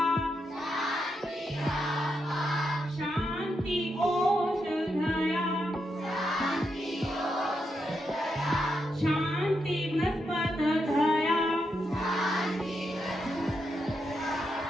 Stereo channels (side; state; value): both; normal; correlation 0.83